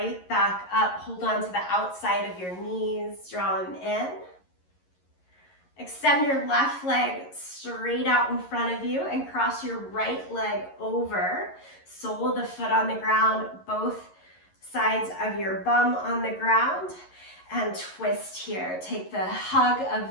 back up. Hold on to the outside of your knees, draw them in. Extend your left leg straight out in front of you and cross your right leg over. Sole of the foot on the ground, both sides of your bum on the ground, and twist here. Take the hug of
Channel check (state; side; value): late; right; 11 ms